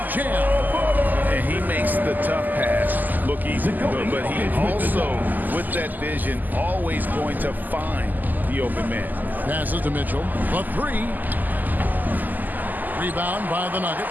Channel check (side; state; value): left; late; 0.085 ms